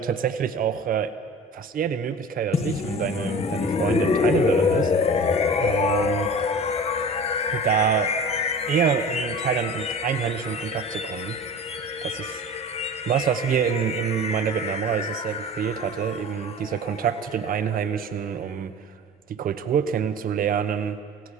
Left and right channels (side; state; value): both; normal; correlation 0.37